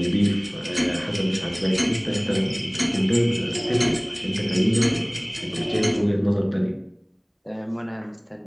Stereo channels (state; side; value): identical; both; correlation 1.00